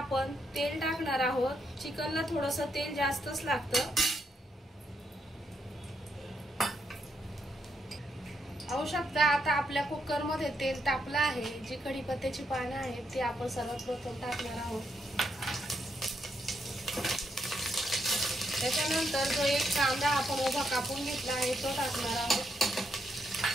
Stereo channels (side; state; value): both; normal; correlation 0.79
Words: तेल टाकणार आहोत। चिकनला थोडंसं तेल जास्तच लागतं। पाहू शकता आता आपल्या कुकर मध्ये तेल तापलं आहे। जी कढीपत्त्याची पाने आहेत ती आपण सर्वात प्रथम टाकणार आहोत। त्याच्यानंतर जो 1 कांदा आपण उभा कापून घेतला आहे तो टाकणार आहोत।